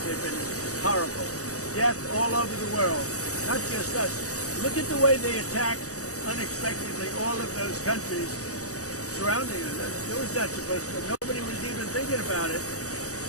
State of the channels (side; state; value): right; late; 0.66 ms